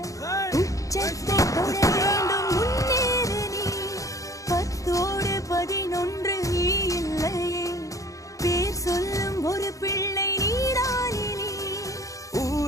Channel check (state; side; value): late; right; 0.16 ms